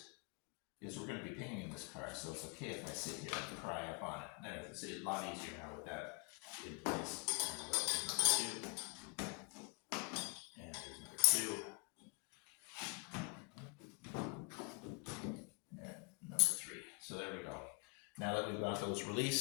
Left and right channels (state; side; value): quieter; right; 32.4 dB